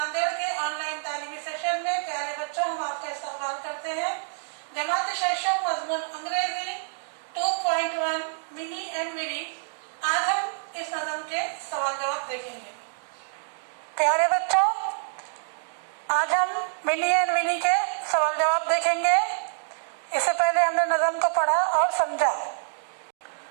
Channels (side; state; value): left; silent; digital silence